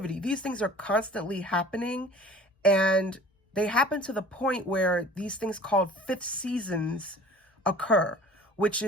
These things are constantly happening, and they happen to the point where these things called fifth seasons occur, which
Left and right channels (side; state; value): both; normal; correlation 0.46